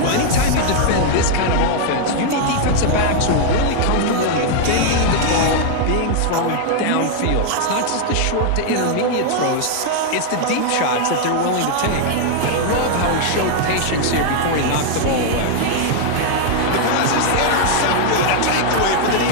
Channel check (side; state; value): both; different; correlation 0.00